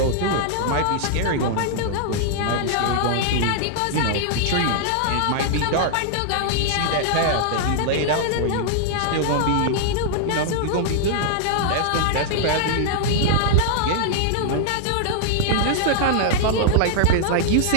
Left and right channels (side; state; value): both; different; correlation -0.01